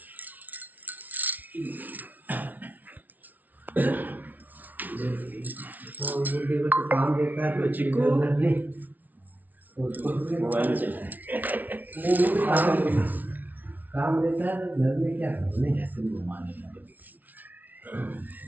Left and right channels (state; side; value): late; left; 0.079 ms